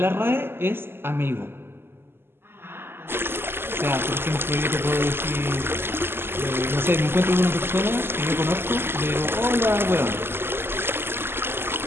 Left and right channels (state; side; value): late; left; 0.11 ms